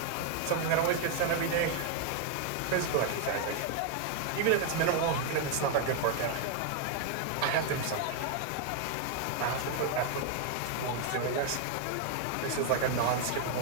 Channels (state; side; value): different; both; correlation 0.00